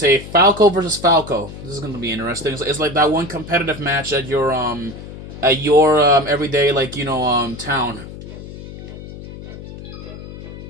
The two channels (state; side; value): noise; left; hum, 13 dB below the sound